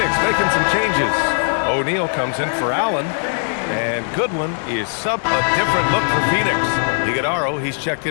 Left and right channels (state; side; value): silent; right; 57 dB below the other